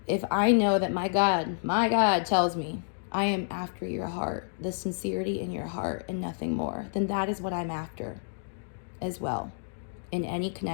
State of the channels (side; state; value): right; silent; digital silence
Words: I know that my God tells me I am after your heart, the sincerity in your heart and nothing more, then that is what I'm after as well. In any